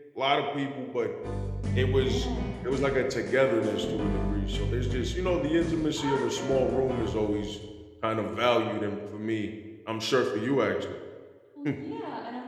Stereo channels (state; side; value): identical; both; correlation 1.00